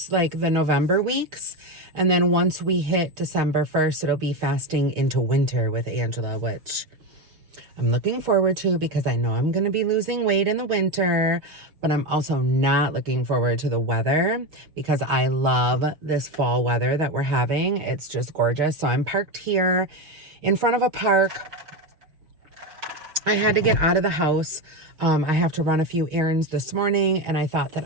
like the November weeks. And then once we hit December 1st, it'll be Fasting into Winter with Angela, which I'm looking forward to because I know I'm going to be losing weight in the winter, but I'm also not looking forward to the weather because I love this fall weather that we're having. It's just gorgeous. So I'm parked here in front of a park. I had to get out of the house. I have to run a few errands this morning, and I thought that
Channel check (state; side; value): late; left; 6.4 ms